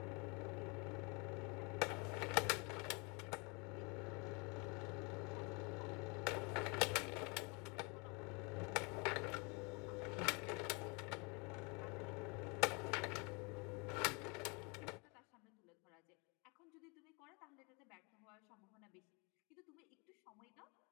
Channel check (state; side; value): quieter; right; 31.0 dB